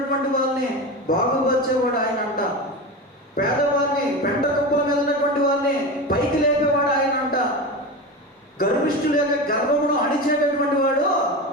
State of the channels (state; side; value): normal; both; correlation 0.24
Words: వాళ్ళని బాగుపరిచేవాడు ఆయన అంట. పేదవారిని పెంట కుప్పల మీద ఉన్నటువంటి వారిని పైకి లేపేవాడు ఆయన అంట. గర్విష్ఠుల యొక్క గర్వమును అణిచేటటువంటి వాడు